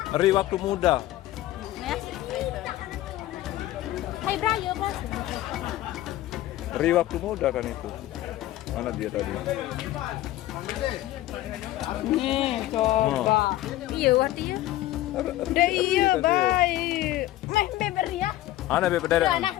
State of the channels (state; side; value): quieter; right; 15.0 dB